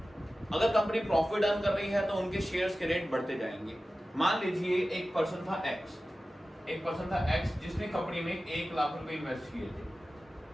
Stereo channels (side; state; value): both; normal; correlation 0.95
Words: अगर कंपनी प्रॉफिट अर्न कर रही है तो उनके शेयर्स के रेट बढ़ते जाएंगे। मान लीजिए एक पर्सन था एक्स जिसने कंपनी में 1 लाख रुपए इन्वेस्ट